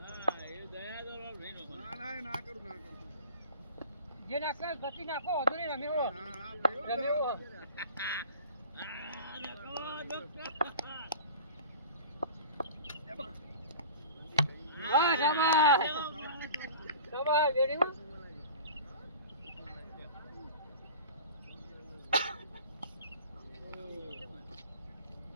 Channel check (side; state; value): both; inverted; correlation -0.40